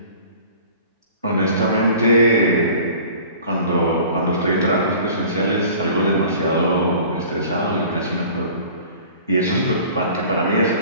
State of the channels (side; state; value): both; inverted; correlation -0.46